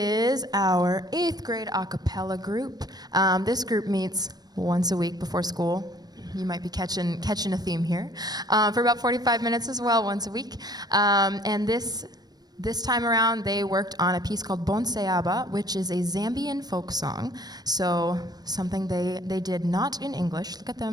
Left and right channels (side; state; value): left; late; 0.19 ms